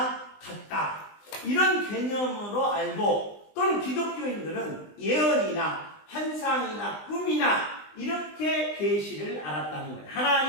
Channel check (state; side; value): late; right; 20 ms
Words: 갔다. 이런 개념으로 알고 또는 기독교인들은 예언이나 환상이나 꿈이나 이렇게 계시를 알았다는 거예요.